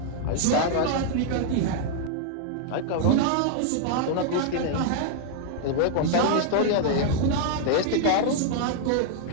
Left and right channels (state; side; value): different; both; correlation 0.00